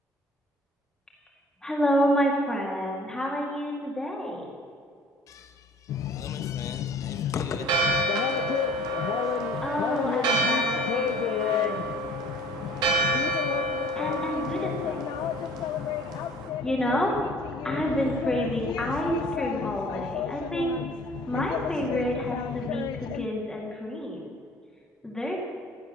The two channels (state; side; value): normal; both; correlation 0.51